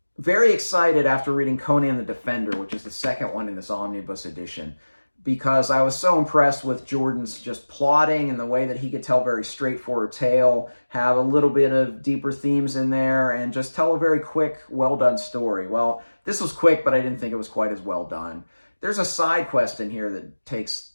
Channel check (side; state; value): both; inverted; correlation -1.00